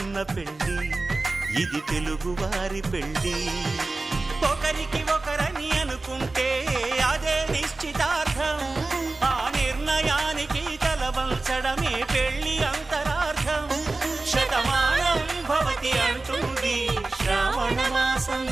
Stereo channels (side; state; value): left; quieter; 3.3 dB